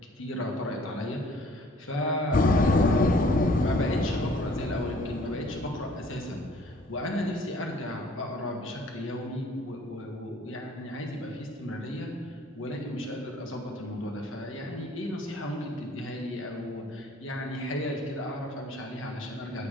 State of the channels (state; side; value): normal; both; correlation 0.56